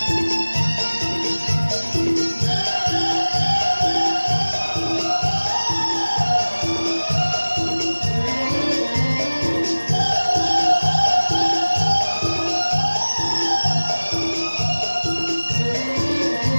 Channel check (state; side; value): inverted; both; correlation -1.00